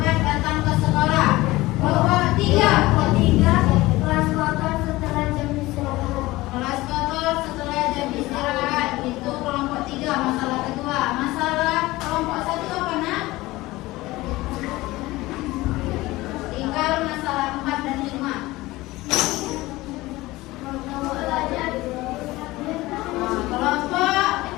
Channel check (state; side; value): quieter; right; 19.2 dB